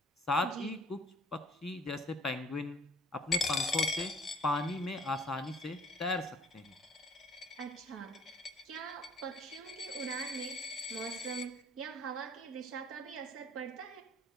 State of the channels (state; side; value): normal; both; correlation 0.57